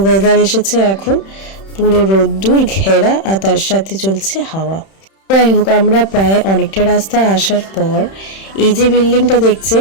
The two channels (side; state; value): right; late; 31 ms